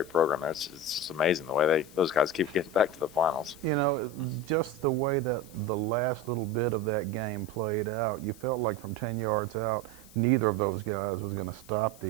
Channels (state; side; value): noise; left; hiss, 22 dB below the sound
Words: program. It's just amazing the way those guys keep getting back to the finals. You know, just the way that the last little bit of that game played out, you felt like from 10 yards out, neither of those guys was going to stop